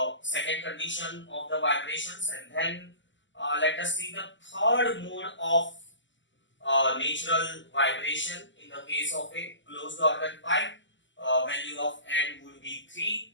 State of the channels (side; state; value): right; late; 0.54 ms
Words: second condition of the vibrations, and then let us see the third mode of natural vibration in the case of a closed organ pipe. Value of n would be